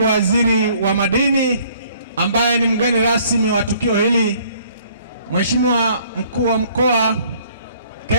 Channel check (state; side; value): inverted; both; correlation -0.60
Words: waziri wa madini ambaye ni mgeni rasmi wa tukio hili, Mheshimiwa mkuu wa mkoa